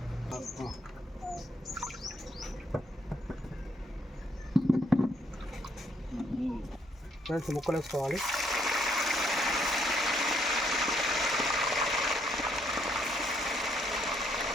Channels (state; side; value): normal; both; correlation 0.70